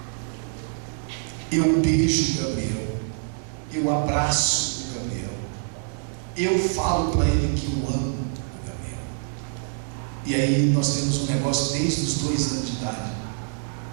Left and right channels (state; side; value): silent; left; 61 dB below the other